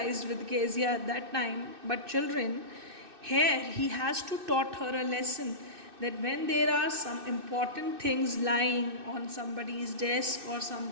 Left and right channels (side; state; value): left; late; 2.6 ms